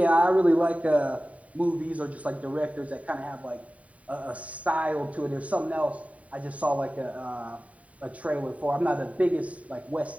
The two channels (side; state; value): left; late; 0.068 ms